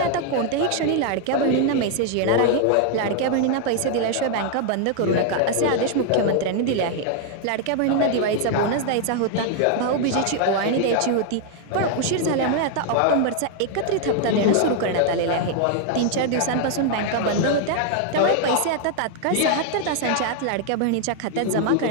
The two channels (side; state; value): both; different; correlation 0.00